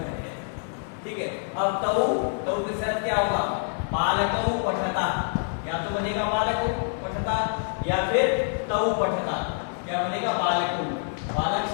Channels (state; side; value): silent; right; 61 dB below the other